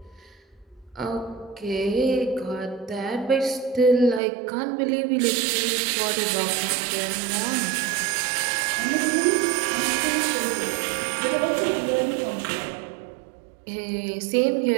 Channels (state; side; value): drops out; left; at 4.2 s